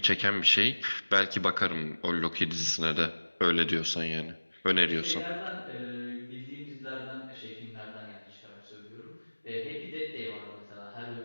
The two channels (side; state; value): both; inverted; correlation -1.00